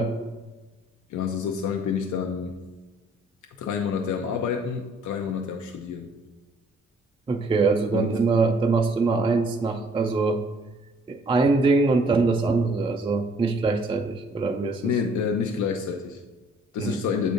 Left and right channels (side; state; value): both; normal; correlation 0.59